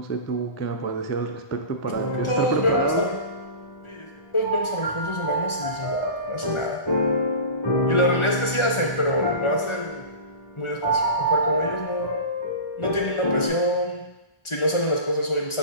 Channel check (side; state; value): right; late; 1.4 ms